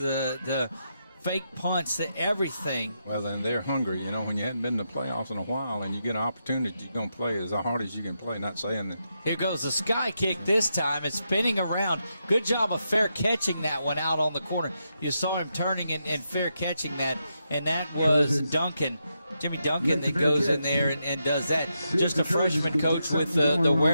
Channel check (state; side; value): inverted; both; correlation -0.84